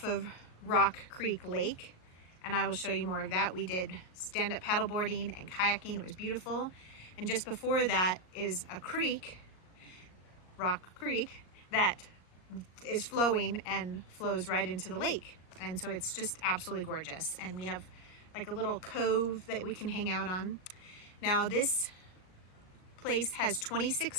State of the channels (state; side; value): late; right; 38 ms